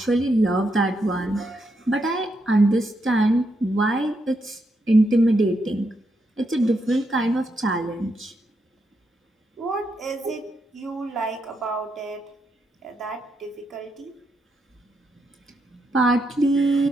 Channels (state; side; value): normal; both; correlation 0.81